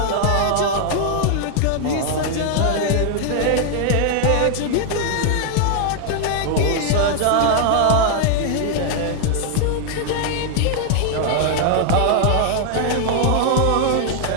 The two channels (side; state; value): both; different; correlation 0.00